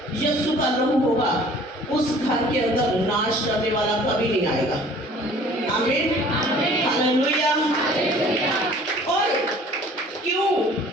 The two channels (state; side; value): normal; both; correlation 0.51